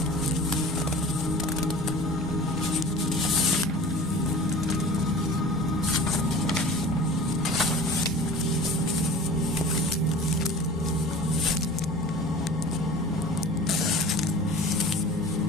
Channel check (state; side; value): normal; both; correlation 0.40